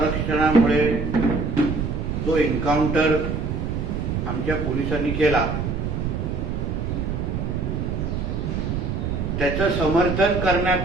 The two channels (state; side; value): noise; right; rumble, 2 dB below the sound